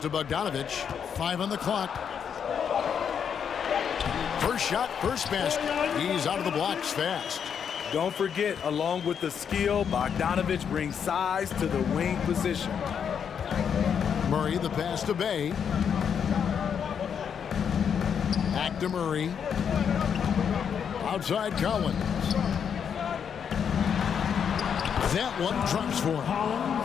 to Bogdanovich. 5 on the clock. First shot, first basket. He's out of the blocks fast. Don't forget, along with the skill, Bogdanovich brings size to the wing position. Murray, the pass to Bay. Back to Murray. Outside Collins. That one drops for him.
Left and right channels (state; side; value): quieter; right; 7.5 dB